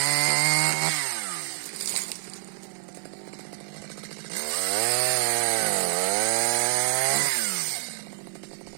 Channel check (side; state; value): left; silent; digital silence